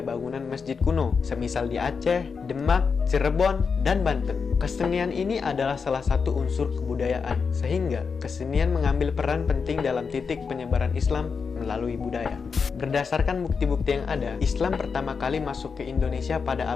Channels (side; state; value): right; quieter; 5.5 dB